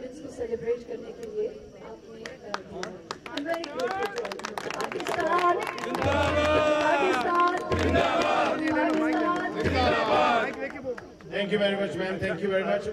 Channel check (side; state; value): both; identical; correlation 1.00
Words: को सेलिब्रेट करने के लिए आपने दिया. I'm very grateful to you. Pakistan thank you very much ma'am, thank you very much.